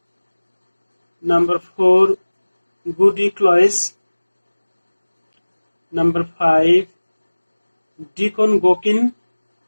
Number 4, Goody Cloyce. Number 5, Deacon Gokin.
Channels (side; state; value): both; inverted; correlation -1.00